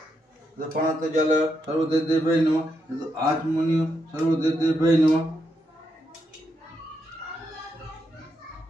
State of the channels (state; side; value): normal; both; correlation 0.81